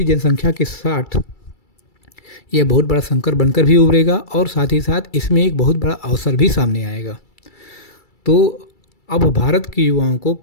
जनसंख्या के साथ यह बहुत बड़ा संकट बनकर भी उभरेगा और साथ ही साथ इसमें एक बहुत बड़ा अवसर भी सामने आएगा। तो अब भारत के युवाओं को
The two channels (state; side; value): late; right; 2.3 ms